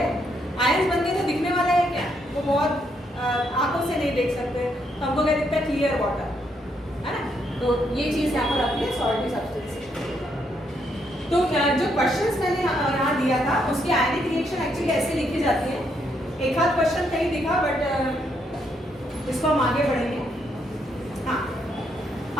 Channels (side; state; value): both; normal; correlation 0.75